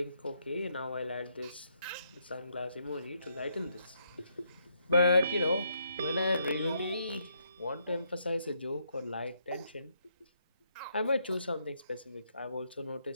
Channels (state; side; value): inverted; both; correlation -0.75